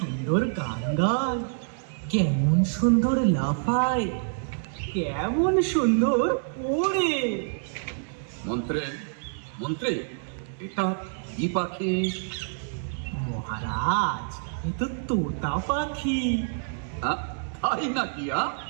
গান গায়, কেমন সুন্দর লাফায়, কেমন সুন্দর ওড়ে। মন্ত্রে মন্ত্রে এটা কি পাখি? মহারাজ, এ তো তোতা পাখি। তাই নাকি?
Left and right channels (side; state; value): left; silent; digital silence